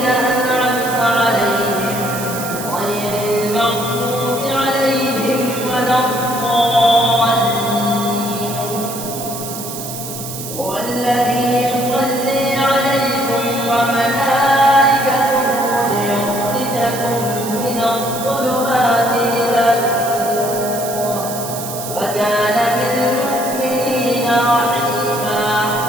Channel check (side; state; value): right; noise; hiss, 9 dB below the sound